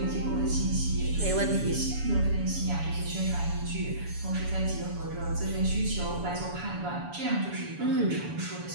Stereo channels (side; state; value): left; late; 7.0 ms